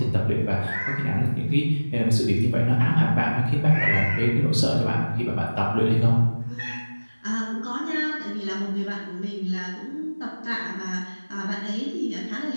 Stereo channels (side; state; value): both; inverted; correlation -1.00